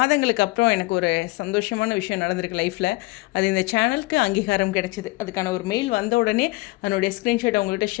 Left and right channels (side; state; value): right; quieter; 22.5 dB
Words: அப்புறம் எனக்கு ஒரு சந்தோஷமான விஷயம் நடந்திருக்கு லைஃப்பில். அது இந்த சேனலுக்கு அங்கீகாரம் கிடைச்சிது. அதுக்கான ஒரு மெயில் வந்த உடனே அதனுடைய ஸ்க்ரீன்ஷாட் அவங்கள்ட்ட